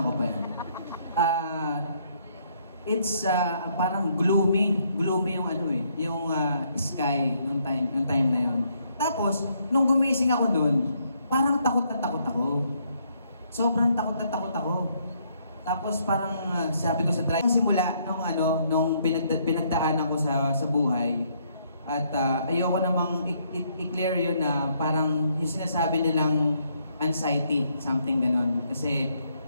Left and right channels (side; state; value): both; inverted; correlation -0.71